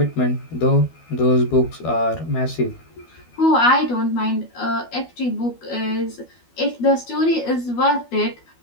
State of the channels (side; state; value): right; late; 12 ms